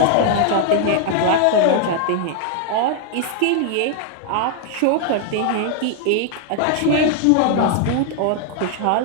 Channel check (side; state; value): both; different; correlation 0.00